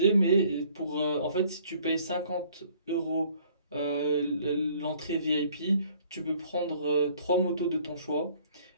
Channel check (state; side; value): inverted; both; correlation -0.58